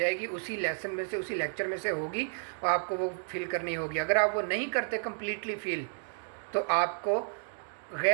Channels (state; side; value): silent; left; digital silence